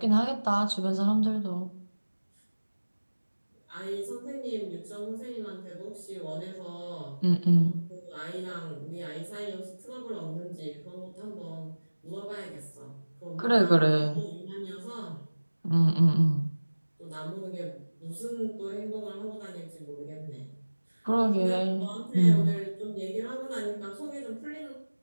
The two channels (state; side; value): inverted; both; correlation -1.00